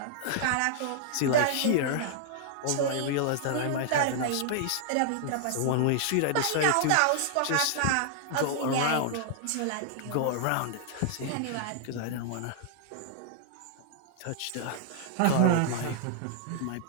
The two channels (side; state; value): both; different; correlation -0.01